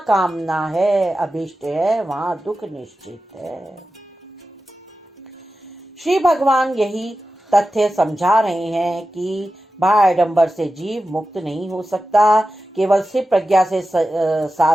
है, अभिष्ट है, वहां दुख निश्चित है। श्री भगवान यही तथ्य समझा रहे हैं कि बाह्याडंबर से जीव मुक्त नहीं हो सकता, केवल सिर्फ प्रज्ञा से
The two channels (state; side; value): normal; both; correlation 0.93